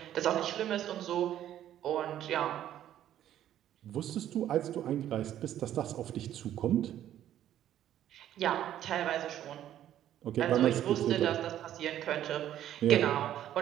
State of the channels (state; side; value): quieter; left; 11.6 dB